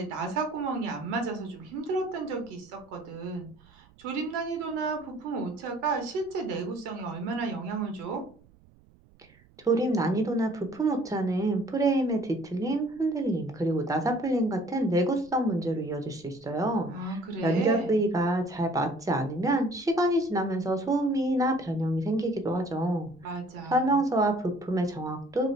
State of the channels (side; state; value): right; noise; rumble, 28 dB below the sound